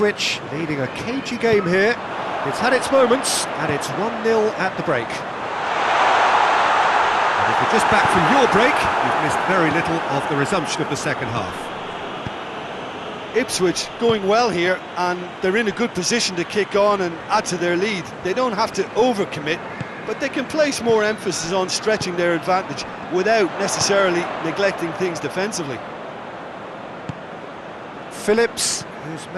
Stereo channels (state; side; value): identical; both; correlation 1.00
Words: leading a cagey game here. It's had its moments, and it's 1-0 at the break. And if you're just back from your break, you've missed very little of the resumption of the second half. Ipswich going well here, and they're in a good position to kick on and add to their lead. They don't have to overcommit, but they can place more emphasis on stretching their advantage without necessarily neglecting things defensively. Phillips, who's